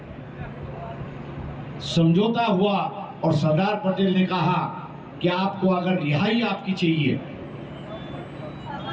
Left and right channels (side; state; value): both; identical; correlation 1.00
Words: समझौता हुआ और सरदार पटेल ने कहा कि आपको अगर रिहाई आपकी चाहिए,